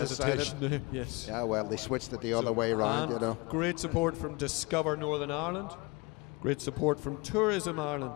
there. Yes. Yeah, well, they switched it the other way around, you know. Great support from Discover Northern Ireland. Great support from Tourism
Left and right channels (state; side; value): quieter; right; 26.4 dB